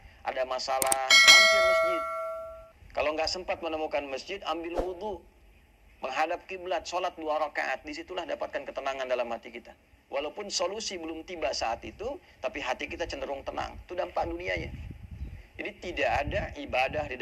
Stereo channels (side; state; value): both; identical; correlation 1.00